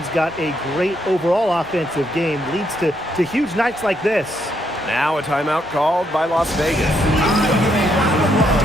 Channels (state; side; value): normal; both; correlation 0.76